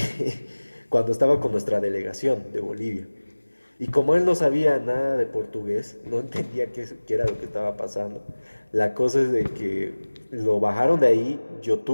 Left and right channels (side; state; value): both; inverted; correlation -1.00